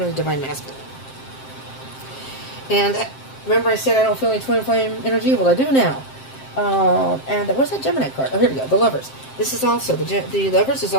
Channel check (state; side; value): late; right; 7.6 ms